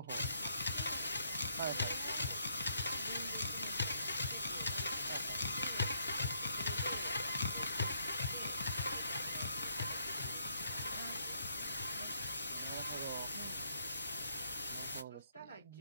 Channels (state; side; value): inverted; both; correlation -0.73